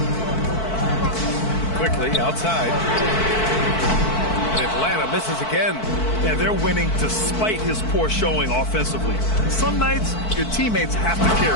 Quickly outside. And Atlanta misses again. And they're winning despite his poor showing offensively. Some nights, your teammates have to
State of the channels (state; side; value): late; right; 4.5 ms